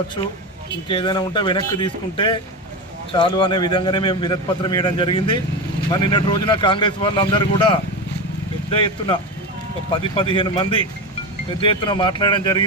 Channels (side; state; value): both; normal; correlation 0.20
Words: ఇంకేదైనా ఉంటే వెనక్కి తీసుకుంటే చాలు అనే విధంగానే మేము వినతి పత్రం ఇవ్వడం జరిగింది. మరి నిన్నటి రోజున కాంగ్రెస్ వాళ్ళందరూ కూడా పెద్ద ఎత్తున 10-15 మంది పెద్ద ఎత్తున మాట్లాడడం